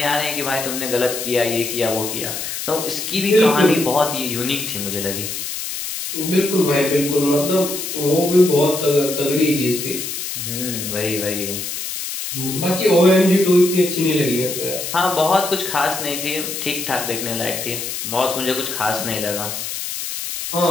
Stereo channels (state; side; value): noise; left; hiss, 5 dB below the sound